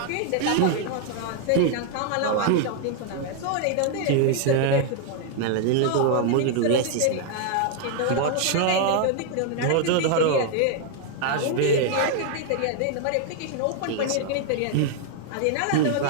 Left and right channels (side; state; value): both; different; correlation 0.00